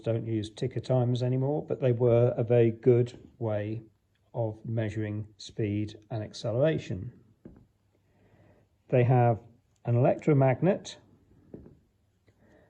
use ticker timers anymore, but they were a very good way of measuring speed and acceleration. They have an electromagnet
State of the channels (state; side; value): identical; both; correlation 1.00